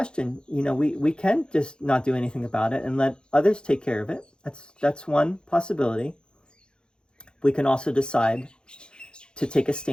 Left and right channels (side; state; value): right; late; 0.049 ms